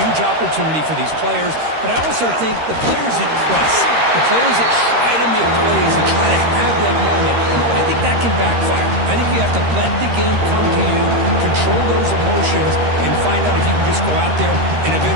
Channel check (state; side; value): late; left; 13 ms